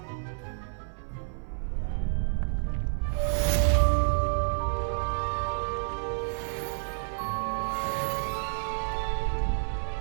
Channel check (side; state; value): left; silent; 58 dB below the other